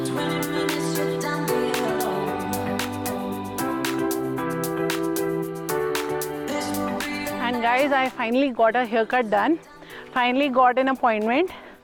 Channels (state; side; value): identical; both; correlation 1.00